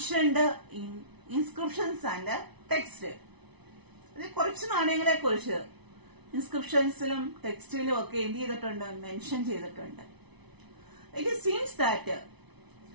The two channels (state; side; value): late; left; 0.99 ms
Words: in inscriptions and text. ഇത് കുറച്ച് നാണയങ്ങളെ കുറിച്ച് ഇൻസ്ക്രിപ്ഷൻസിലും ടെക്സ്റ്റിലും ഒക്കെ എന്ത് ചെയ്തിട്ടുണ്ട്? മെൻഷൻ ചെയ്തിട്ടുണ്ട്. It seems that